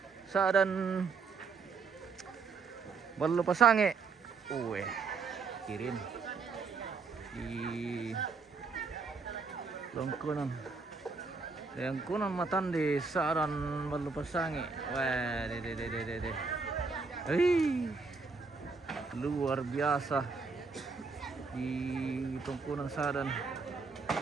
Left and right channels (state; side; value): quieter; left; 4.7 dB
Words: Saadan Balupasangi. Kirim di Tungkunan Matande Saadan Balupasangi. Wah, luar biasa di Tungkunan Saadan